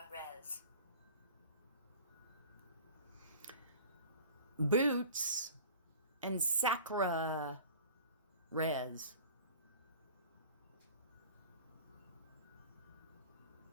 Res. Boots and Sacra Res.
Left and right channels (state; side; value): inverted; both; correlation -0.42